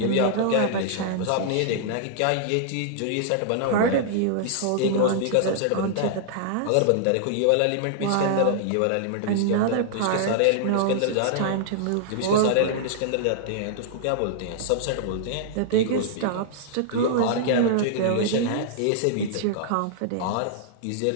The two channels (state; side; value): different; both; correlation -0.01